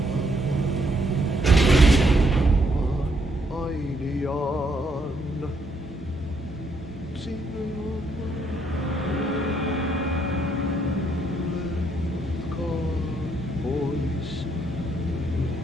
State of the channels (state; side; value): normal; both; correlation 0.73